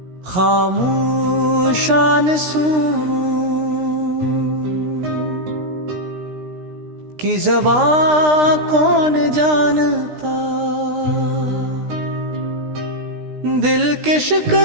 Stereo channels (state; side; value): late; left; 16 ms